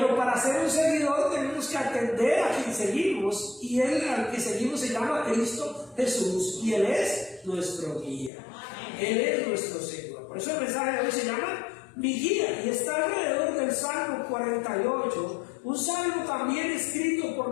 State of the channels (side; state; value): right; drops out; at 8.3 s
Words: para ser un seguidor tenemos que atender a quien seguimos, y Él al que seguimos se llama Cristo Jesús, y Él es nuestro guía. Él es nuestro Señor. Por eso el mensaje de hoy se llama Mi Guía, y está alrededor del Salmo 48, un salmo también escrito por